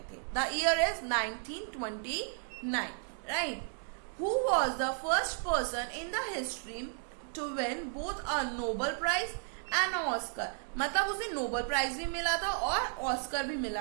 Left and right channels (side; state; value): left; silent; 55 dB below the other